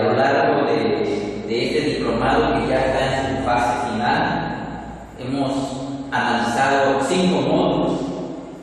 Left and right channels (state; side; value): identical; both; correlation 1.00